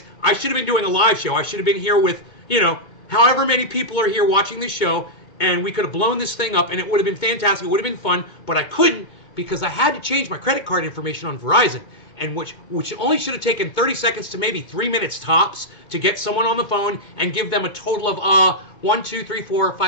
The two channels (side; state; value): right; late; 2.2 ms